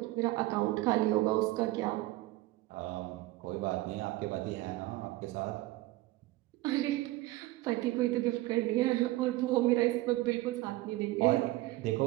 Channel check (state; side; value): quieter; left; 18.3 dB